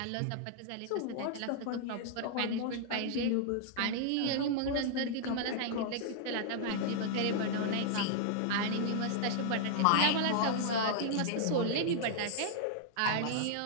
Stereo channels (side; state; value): both; different; correlation -0.01